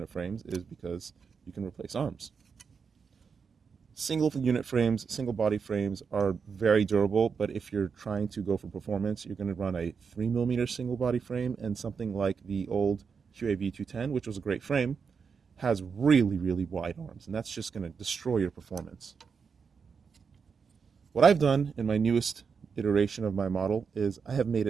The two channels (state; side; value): quieter; left; 5.8 dB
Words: frames is because you can replace arms. Single unit frames, single body frames are very durable, but if you're trying to go for performance, you're going to run a 3mm single body frame, and something like the old QAV 210, which was a great frame, has really, really wide arms, and that's just going to destroy your performance. What I've done in my newest iteration of my model is I have made